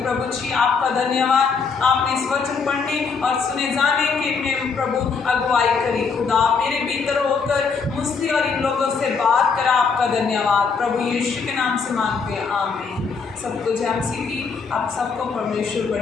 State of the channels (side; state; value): right; quieter; 5.3 dB